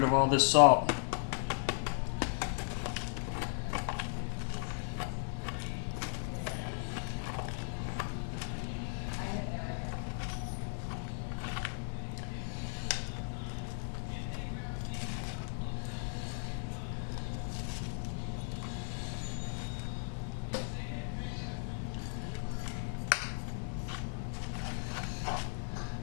of all this salt.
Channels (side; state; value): right; silent; 53 dB below the other